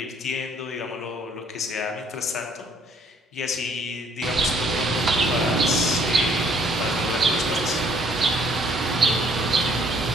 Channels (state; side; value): normal; both; correlation 0.62